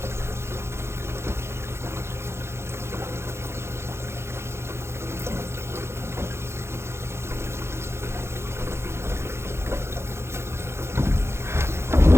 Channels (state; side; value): late; left; 0.13 ms